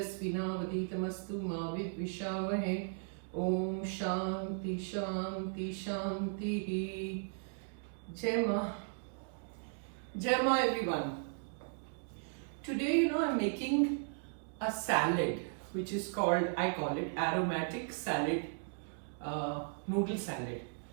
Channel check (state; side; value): silent; left; digital silence